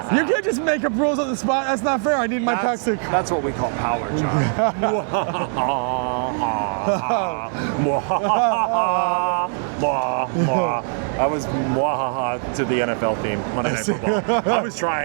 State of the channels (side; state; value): left; silent; 58 dB below the other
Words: just make up rules on the spot. That's not fair. I need my packs to... That's what we call power, John. I was mwahaha to the NFL theme, Monday Night Football. I was